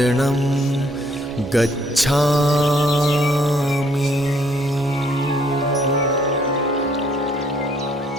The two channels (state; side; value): normal; both; correlation 0.65